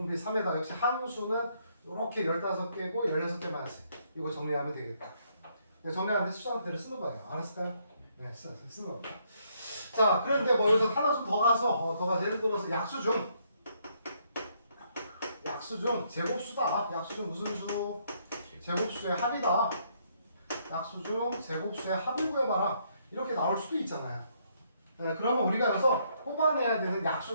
3에다 역시 항수는 이렇게 15개고 16개 마이너스 이거 정리하면 되겠다. 네, 정리하는데 수정대로 쓰는 거예요. 알았을까요? 네, 쓰는 겁니다. 자, 그런데 뭐 여기서 하나 좀 더 가서 예를 들어서 약수 중 제곱수다. 약수 중 무슨 수? 제곱수의 합이다. 약수 중 제곱수의 합을 구해봐라. 이렇게 나올 수도 있잖아요. 네, 그러면 우리가 여기서 뽑아내야 되는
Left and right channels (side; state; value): both; inverted; correlation -0.71